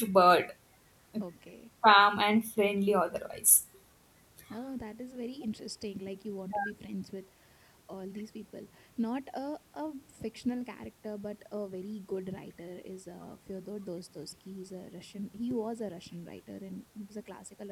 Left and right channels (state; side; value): identical; both; correlation 1.00